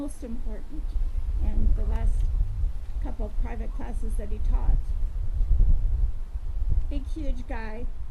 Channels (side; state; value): both; identical; correlation 1.00